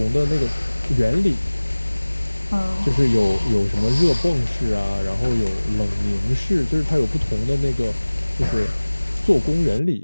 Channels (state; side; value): inverted; both; correlation -1.00